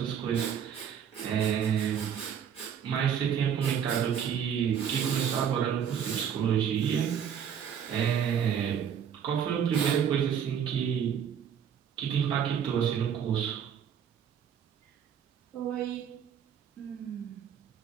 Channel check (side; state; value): left; quieter; 8.3 dB